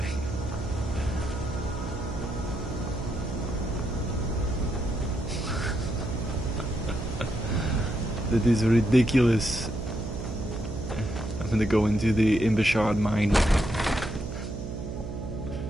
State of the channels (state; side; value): noise; right; hum, 7 dB below the sound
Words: That is ridiculous. I'm gonna go into the Imbashard mine.